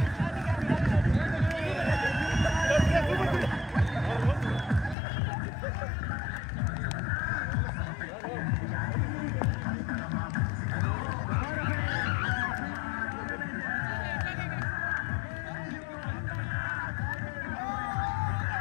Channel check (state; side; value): drops out; right; at 5.0 s